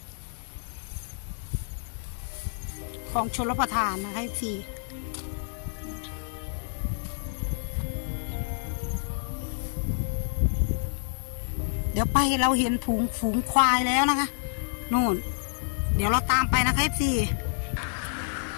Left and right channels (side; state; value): right; silent; digital silence